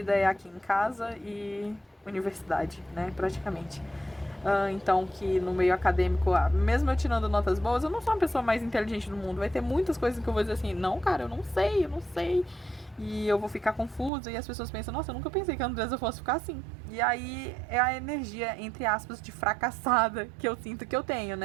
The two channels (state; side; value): drops out; left; at 14.1 s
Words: é aqui em casa e universidade, né? Praticamente. Então, que no meio acadêmico, mesmo eu tirando notas boas, eu não sou a pessoa mais inteligente do mundo. Vai ter muitas coisas que eu vou dizer assim, não, cara, eu não sei. E eu vou ficar confusa, e as pessoas pensam, nossa, eu nunca pensei que a Andressa fosse ficar assim. E aí é a energia, entre aspas, de fracassada que eu sinto que eu tenho,